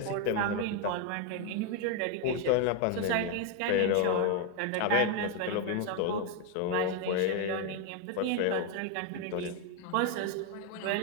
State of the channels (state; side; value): different; both; correlation 0.01